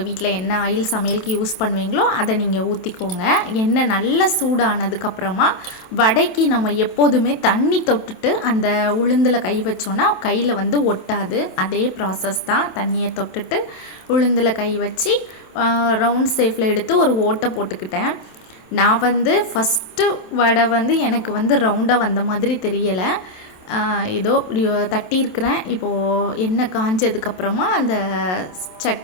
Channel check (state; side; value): late; right; 27 ms